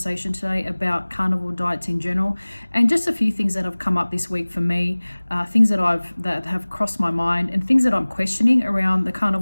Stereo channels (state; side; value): inverted; both; correlation -1.00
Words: today about carnivore diets in general and just a few things that have come up this week for me, things that have crossed my mind and things that I'm questioning around the